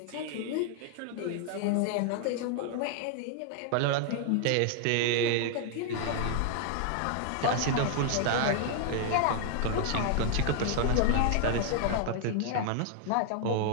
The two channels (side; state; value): both; different; correlation 0.00